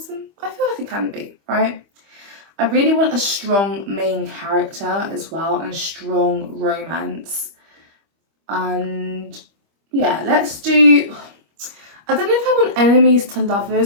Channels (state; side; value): late; left; 25 ms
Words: I feel like it can be, right? I really want a strong main character as well, and a strong romance. And yeah, let's do, I don't know if I want enemies to